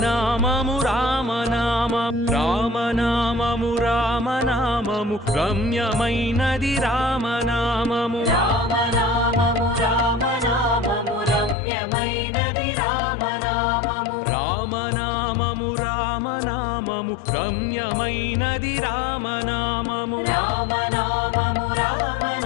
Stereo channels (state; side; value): drops out; right; at 11.6 s